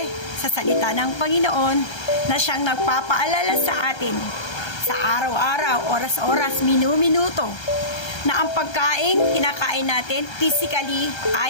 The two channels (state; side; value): late; right; 1.3 ms